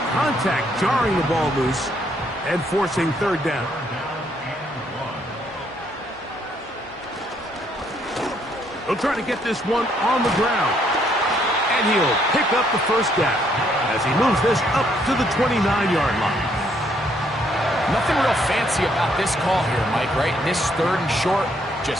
contact jarring the ball loose and forcing third down. He'll try to get this one on the ground. And he'll pick up the first down as he moves this up to the 29-yard line. Nothing real fancy about this call here, Mike, right? This 3rd and short,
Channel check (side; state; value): both; normal; correlation 0.70